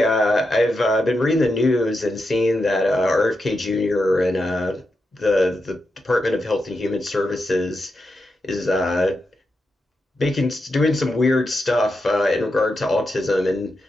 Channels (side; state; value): both; normal; correlation 0.87